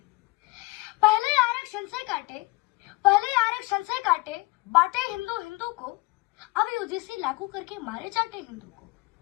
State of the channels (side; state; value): right; quieter; 23.5 dB